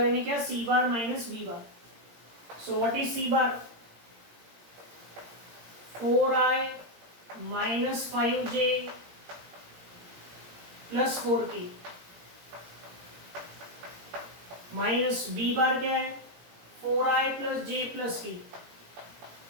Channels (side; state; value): left; late; 17 ms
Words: यानी क्या C bar minus B bar. So what is C bar 4i minus 5j plus 4k minus B bar क्या है 4i plus j plus k।